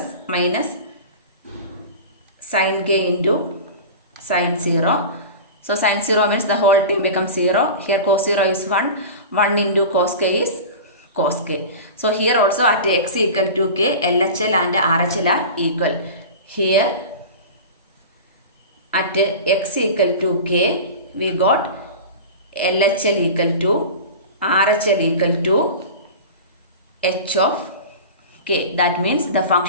minus sin k into sin 0. So sin 0 means the whole term becomes 0. Here cos 0 is 1. 1 into cos k is cos k. So here also at x equal to k, LHL and RHL are equal. Here at x equal to k, we got LHL equal to RHL equal to h of k. That means the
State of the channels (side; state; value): both; inverted; correlation -0.32